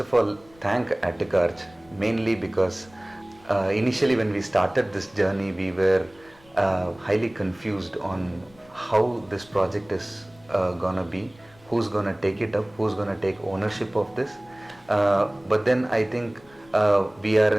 of all thank ATTICARCH, mainly because initially when we started this journey, we were highly confused on how this project is gonna be, who's gonna take it up, who's gonna take ownership of this. But then I think we are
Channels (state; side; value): noise; left; rumble, 27 dB below the sound